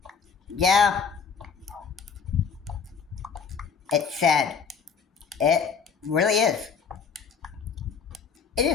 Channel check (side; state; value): right; quieter; 6.1 dB